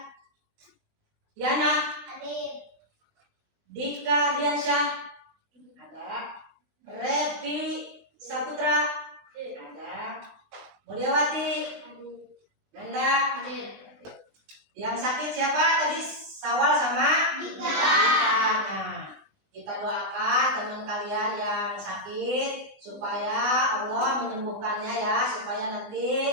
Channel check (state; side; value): late; left; 20 ms